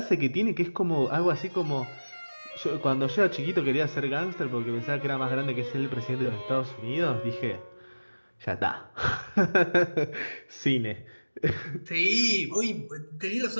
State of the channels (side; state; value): both; inverted; correlation -1.00